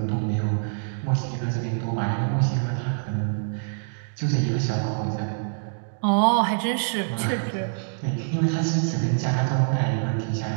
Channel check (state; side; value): silent; left; digital silence